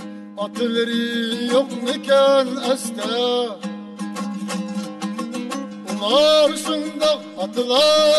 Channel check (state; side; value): identical; both; correlation 1.00